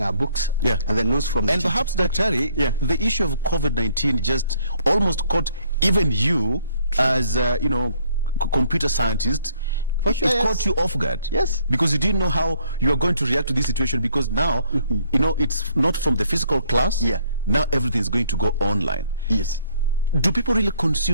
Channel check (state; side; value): inverted; both; correlation -0.65